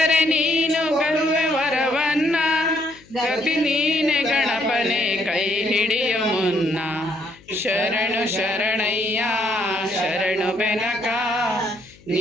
ನೀನು ಗರುವೆ ವರವನ್ನ ಗತಿ ನೀನೆ ಗಣಪನೆ ಕೈ ಹಿಡಿಯ ಮುನ್ನ ಶರಣು ಶರಣಯ್ಯ ಶರಣು ಬೆನಕ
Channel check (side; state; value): left; noise; hum, 27 dB below the sound